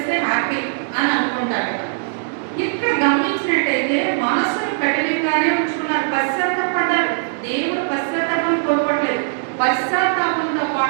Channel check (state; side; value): silent; left; digital silence